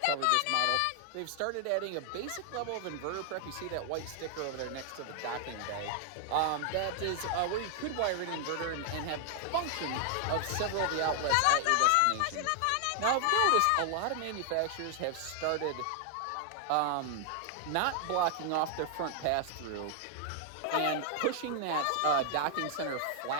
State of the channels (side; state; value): both; different; correlation 0.00